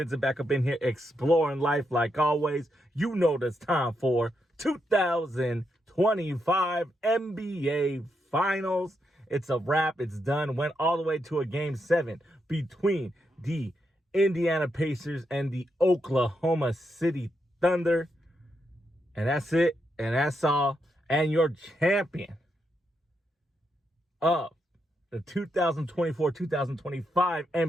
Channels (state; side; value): normal; both; correlation 0.82